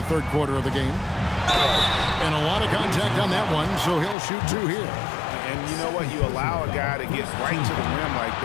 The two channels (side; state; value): right; drops out; at 4.2 s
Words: third quarter of the game. And a lot of contact on that one, so he'll shoot two here. And you know what? You allow a guy to get right to the rim like